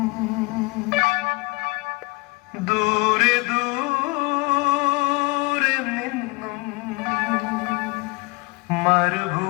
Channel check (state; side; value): quieter; right; 25.1 dB